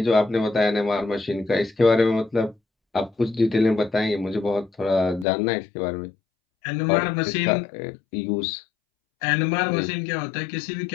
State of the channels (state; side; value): drops out; right; at 5.2 s